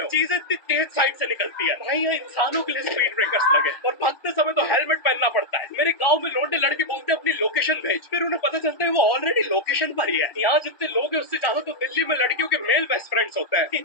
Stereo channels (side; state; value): right; late; 1.2 ms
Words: हो। चीजें इतनी तेज साइड से निकलती है भाई, यहाँ इंसानों के लिए स्पीड ब्रेकर्स लगे, और भागते समय तो हेलमेट पहनना पड़ता है। मेरे गाँव में लौंडे लड़के बोलते हैं अपनी लोकेशन भेज, फिर उन्हें पता चलता है वो ऑलरेडी लोकेशन पर ही है। यहाँ जितने लोग हैं उससे ज्यादा तो दिल्ली में लड़कियों के मेल बेस्ट फ्रेंड्स होते हैं।